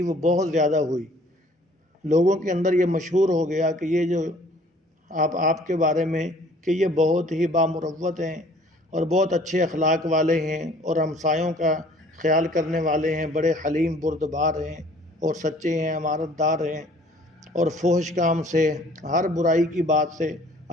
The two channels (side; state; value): both; normal; correlation 0.54